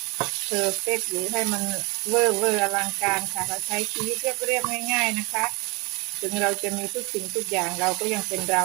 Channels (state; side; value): quieter; left; 27.8 dB